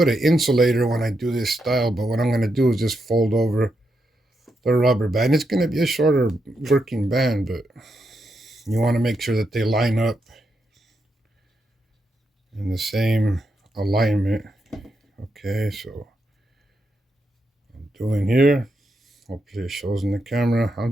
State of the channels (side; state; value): both; normal; correlation 0.83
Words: an insulator when I do this style, but what I'm going to do is just fold over the rubber band. It's going to be a shorter working band, but you want to make sure that they line up in the same alignment. Okay, so I'm doing here. Hopefully it shows in the camera. I'm